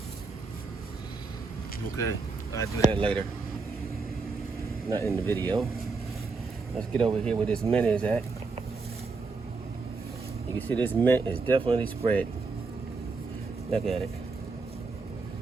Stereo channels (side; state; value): left; quieter; 4.2 dB